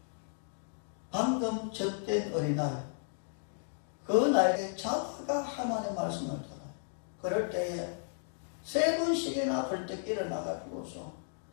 방금 젖된 어린아이, 그 나에게 자다가 하나님의 말씀을 들어요. 그럴 때에 3번씩이나 벌떡 일어나가지고서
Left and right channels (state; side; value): silent; right; digital silence